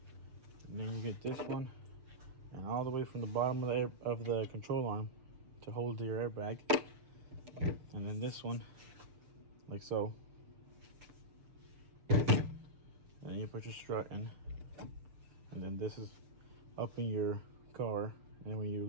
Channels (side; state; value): left; late; 6.9 ms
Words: and then you get this one, and all the way from the bottom of the control arm to hold your airbag, and then this one like so, and then you put your strut in, and then this is up in your car, and when